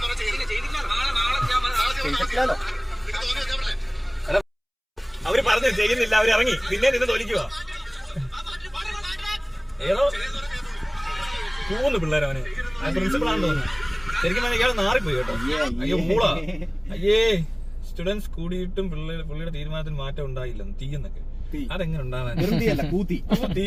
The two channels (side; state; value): both; identical; correlation 1.00